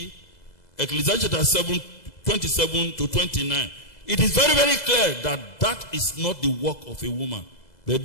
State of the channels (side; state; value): right; late; 2.0 ms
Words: Ecclesiastes chapter 7, 27 to 29, it is very, very clear that that is not the work of a woman. But